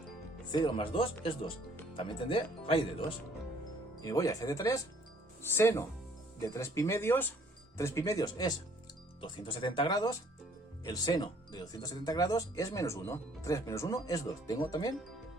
0 más 2 es 2. También tendré raíz de 2. Y me voy a f de 3. Seno de 3 pi medios. 3 pi medios es 270 grados. El seno de 270 grados es menos 1. 3 menos 1 es 2. Tengo también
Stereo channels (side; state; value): both; normal; correlation 0.60